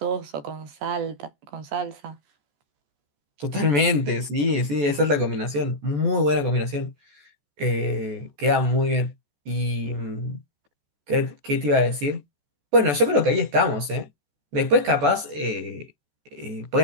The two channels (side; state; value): left; late; 14 ms